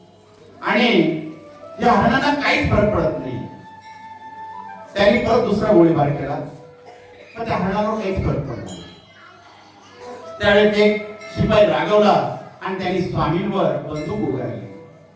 आणि या हरणांना काहीच फरक पडत नाही. त्यांनी परत दुसरा गोळीबार केला पण त्या हरणावर काहीच फरक पडला नाही. त्यावेळेस एक शिपाई रागवला आणि त्यांनी स्वामींवर बंदूक उगारली.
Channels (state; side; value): identical; both; correlation 1.00